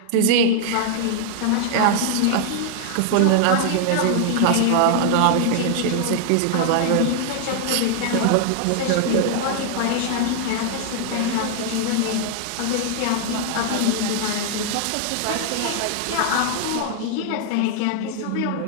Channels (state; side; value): different; both; correlation 0.00